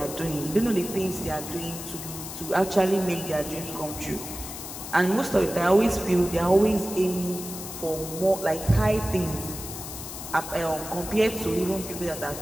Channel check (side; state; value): left; noise; hiss, 10 dB below the sound